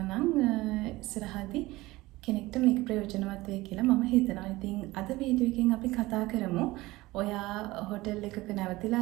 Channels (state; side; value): quieter; left; 19.5 dB